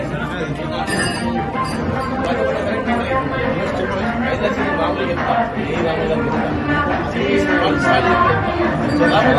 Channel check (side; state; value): both; identical; correlation 1.00